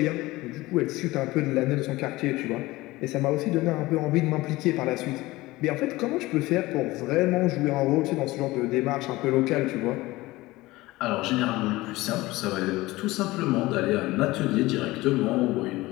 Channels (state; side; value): quieter; right; 19.4 dB